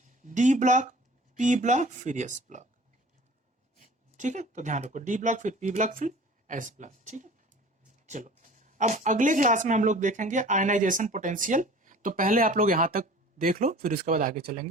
D block, P block, फिर एस ब्लॉक, ठीक है। तो ध्यान रखो, डी ब्लॉक फिर पी ब्लॉक फिर एस ब्लॉक, ठीक है। चलो अब अगले क्लास में हम लोग देखेंगे आयनाइजेशन पोटेंशियल। तो पहले आप लोग यहां तक देख लो, फिर उसके बाद आगे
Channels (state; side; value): normal; both; correlation 0.44